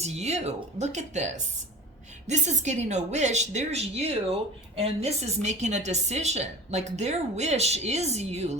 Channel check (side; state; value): both; normal; correlation 0.38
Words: you. Look at this. This is getting a wish. There's you, and this is making a decision. Like their wish is you,